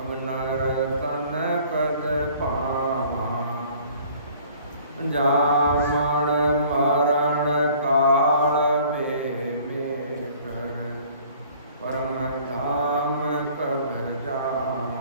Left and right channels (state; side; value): inverted; both; correlation -0.54